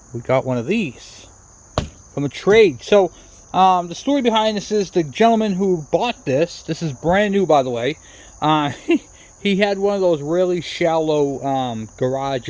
we got one of these from a trade. So the story behind this is the gentleman who bought this is brand new by the way, he had one of those really shallow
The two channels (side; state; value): both; identical; correlation 1.00